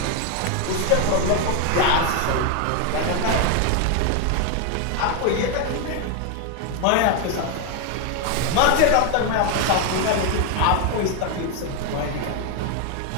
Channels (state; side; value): different; both; correlation 0.01